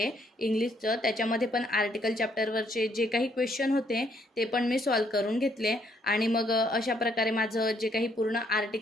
इंग्लिशचं. त्याच्यामध्ये पण आर्टिकल चॅप्टरवरचे जे काही क्वेश्चन होते ते पण मी सॉल्व करून घेतले आणि मग अशा प्रकारे माझं जे काही पूर्ण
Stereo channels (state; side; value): normal; both; correlation 0.69